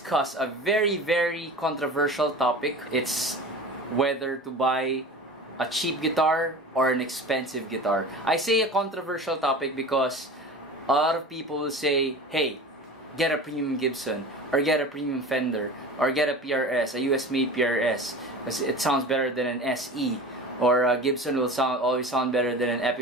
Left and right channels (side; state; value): both; normal; correlation 0.35